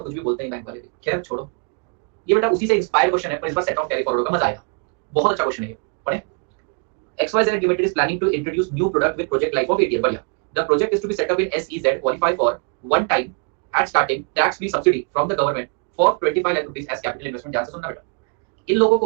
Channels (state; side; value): quieter; left; 35.5 dB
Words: कुछ भी बोलते हैं बैंक वाले भी, खैर छोड़ो। ये बेटा उसी से इंस्पायर क्वेश्चन है, पर इस बार सेट ऑफ कैरी फॉरवर्ड का मजा आएगा, बहुत अच्छा क्वेश्चन है ये, पढ़े। XYZ Limited is planning to introduce new product with project life of 8 years. बढ़िया। The project is to be set up in SEZ, qualify for one time at starting tax free subsidy from the government for 25 lakh rupees as capital investment। ध्यान से सुनना बेटा, इन लोगों